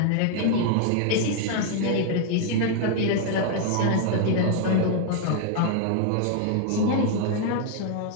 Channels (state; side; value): different; both; correlation 0.00